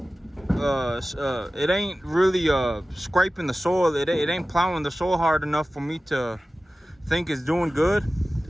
really scraping the soil. It ain't plowing the soil hard enough for me to think it's doing good.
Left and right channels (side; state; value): both; normal; correlation 0.96